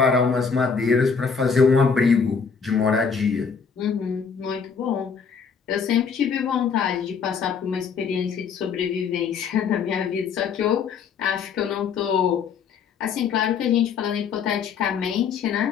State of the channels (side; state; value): right; quieter; 6.1 dB